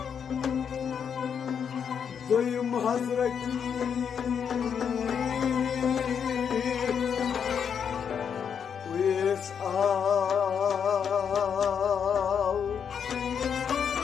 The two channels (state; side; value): quieter; right; 7.4 dB